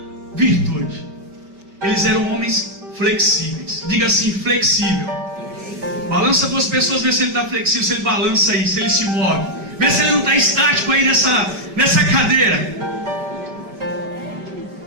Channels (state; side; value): late; left; 5.1 ms